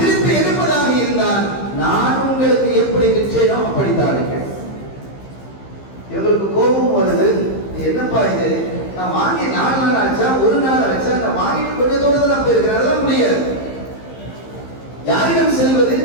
எடுப்பதாக இருந்தால் நான் உங்களுக்கு எப்படி விற்றேனோ அப்படித்தான் இருக்கேன். இவங்களுக்கு கோபம் வருது. என்னப்பா இது, நான் வாங்கி 4 நாள் ஆச்சா, 1 நாள் ஆச்சா, நான் வாங்கிட்டு கொஞ்சம் தூரத்தில் நான் போயிருக்கிறேன், அதெல்லாம் முடியாது. யாரிடம் செல்வது?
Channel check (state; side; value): late; right; 15 ms